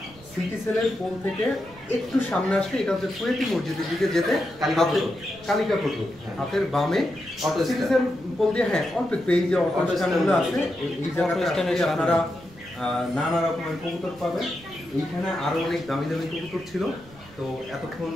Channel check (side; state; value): right; noise; rumble, 22 dB below the sound